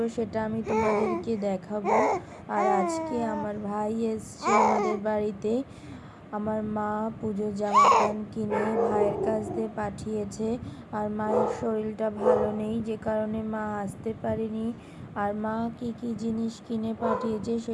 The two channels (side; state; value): both; identical; correlation 1.00